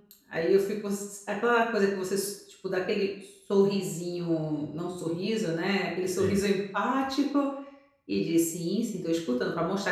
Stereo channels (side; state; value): both; identical; correlation 1.00